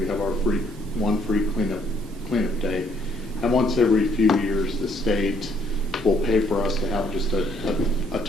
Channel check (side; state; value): both; normal; correlation 0.67